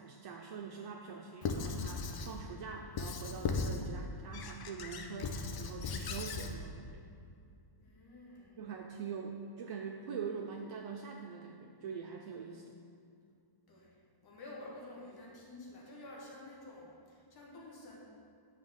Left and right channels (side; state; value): right; late; 1.0 ms